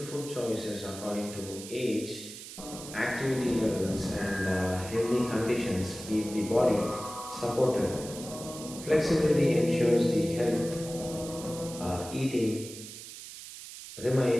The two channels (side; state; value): right; noise; hiss, 13 dB below the sound